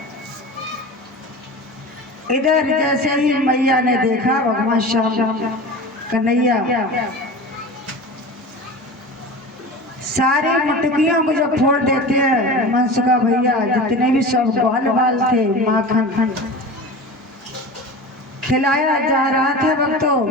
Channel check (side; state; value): both; normal; correlation 0.32